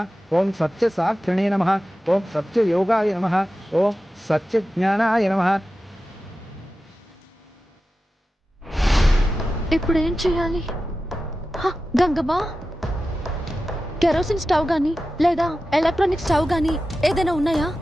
ఓం సత్యసాక్షిణే నమః, ఓం సత్యయోగాయ నమః, ఓం సత్యజ్ఞానాయ నమః. ఇప్పుడు ఏం చేయాలి? గంగమ్మా, కెరోసిన్ స్టవ్ గానీ లేదా ఎలక్ట్రానిక్ స్టవ్ గానీ ఏదైనా ఉన్నాయా?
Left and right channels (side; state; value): both; normal; correlation 0.93